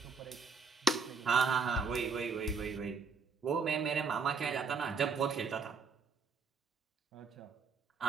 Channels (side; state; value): left; quieter; 4.9 dB